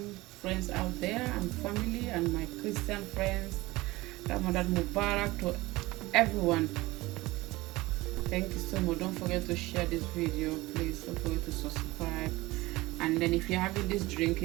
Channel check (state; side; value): quieter; left; 20.0 dB